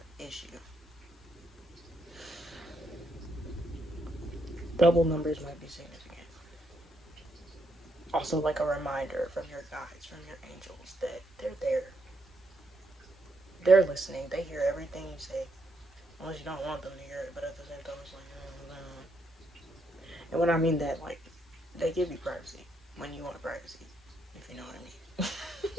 issue, double numbers might be significant. Also, like a reminder from your guides, from your angels, that they're there. They're listening. They hear everything you say. Unless you don't want them to hear it, but at the same time, it's like, and when I mean that, like, they give you privacy when you want privacy, if you know what I mean.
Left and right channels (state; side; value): normal; both; correlation 0.76